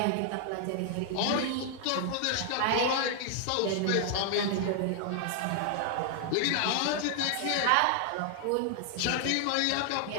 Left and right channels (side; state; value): both; different; correlation 0.00